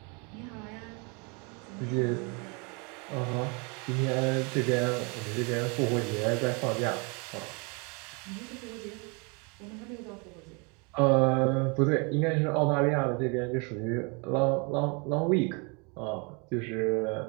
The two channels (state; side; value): quieter; left; 32.2 dB